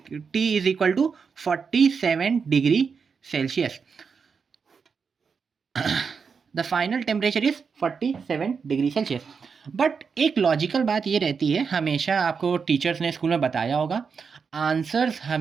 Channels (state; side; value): quieter; left; 5.7 dB